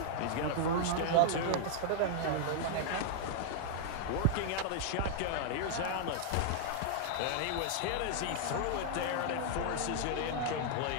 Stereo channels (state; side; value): different; both; correlation -0.01